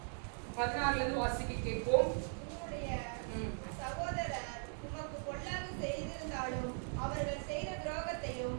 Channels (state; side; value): silent; left; 51 dB below the other